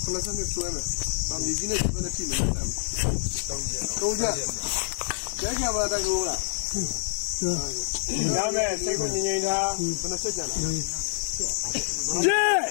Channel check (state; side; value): silent; right; digital silence